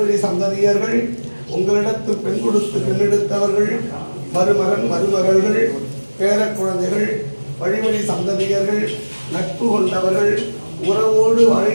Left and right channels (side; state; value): both; inverted; correlation -1.00